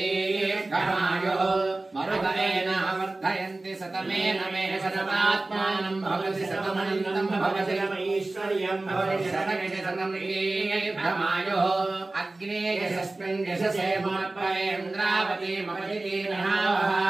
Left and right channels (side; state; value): left; quieter; 3.0 dB